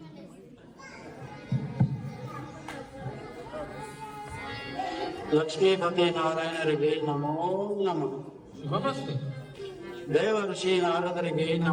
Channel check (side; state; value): both; identical; correlation 1.00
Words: ಲಕ್ಷ್ಮೀಪತಿ ನಾರಾಯಣರಿಗೆ ನಮೋ ನಮಃ. ದೇವ ಋಷಿ ನಾರದರಿಗೆ